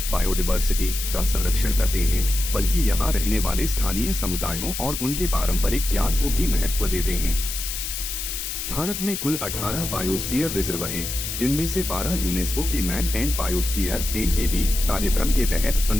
बायोडायवर्सिटी का संरक्षण करते हैं, बल्कि यहाँ रहने वाले स्थानीय समुदायों और उनके पारंपरिक ज्ञान को भी महत्व देते हैं। भारत में कुल 18 बायोस्फीयर रिजर्व हैं, जिनमें से 12 यूनेस्को के मैन एंड बायोस्फीयर (MAB) कार्यक्रम के तहत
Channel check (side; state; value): left; noise; hiss, 5 dB below the sound